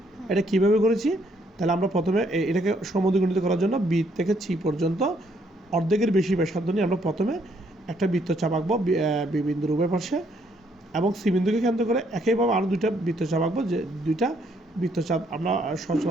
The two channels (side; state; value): both; normal; correlation 0.69